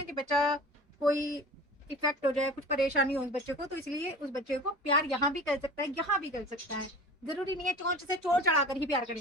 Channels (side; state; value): both; normal; correlation 0.39